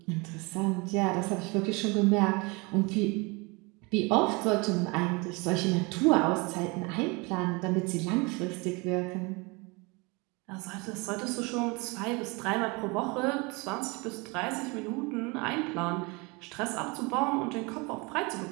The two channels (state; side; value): quieter; left; 27.7 dB